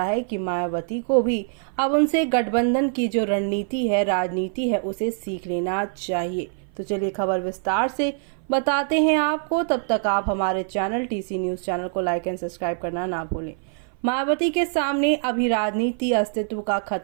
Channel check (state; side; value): silent; left; 57 dB below the other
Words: है कि मायावती को भी अब उनसे गठबंधन की जो रणनीति है, राजनीति है, उसे सीख लेना चाहिए। तो चलिए खबर विस्तार से बताते हैं आपको। तब तक आप हमारे चैनल टीसी न्यूज चैनल को लाइक एंड सब्सक्राइब करना ना भूलें। मायावती के सामने अभी राजनीति अस्तित्व का